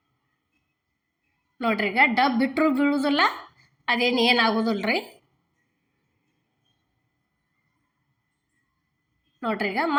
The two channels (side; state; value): both; identical; correlation 1.00